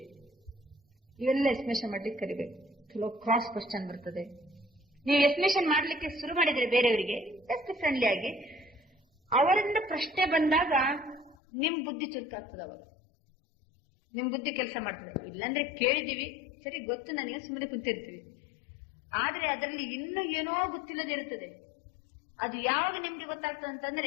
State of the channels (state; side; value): drops out; right; at 11.4 s